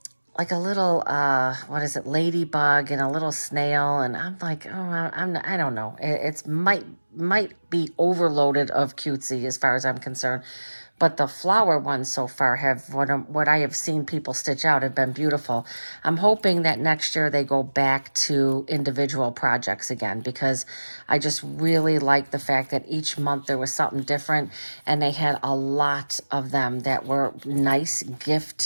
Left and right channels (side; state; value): both; inverted; correlation -1.00